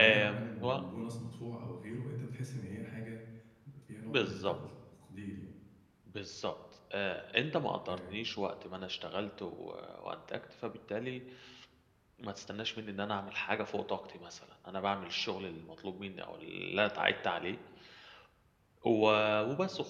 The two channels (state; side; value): identical; both; correlation 1.00